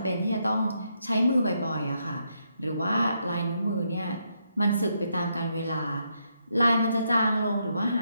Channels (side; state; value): both; inverted; correlation -0.79